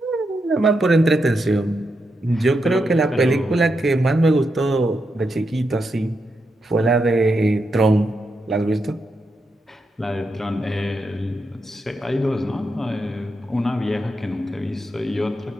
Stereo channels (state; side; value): normal; both; correlation 0.84